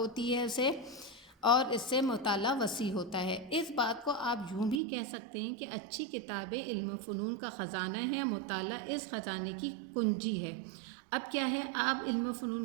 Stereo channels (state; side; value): drops out; left; at 4.8 s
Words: ہے اسے، اور اس سے مطالعہ وسیع ہوتا ہے۔ اس بات کو آپ یوں بھی کہہ سکتے ہیں کہ اچھی کتابیں علم و فنون کا خزانہ ہے، مطالعہ اس خزانے کی کنجی ہے۔ اب کیا ہے، آپ علم و فنون